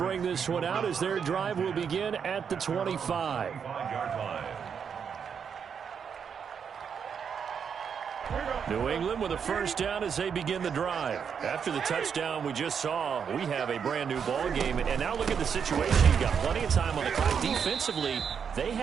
this one out as their drive will begin at the 25. 5-yard line. New England with a 1st down as they begin the drive. After the touchdown we just saw, we have a brand new ball game. And now look at the situation. You've got plenty of time on the clock. Defensively, they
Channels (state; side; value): quieter; left; 7.0 dB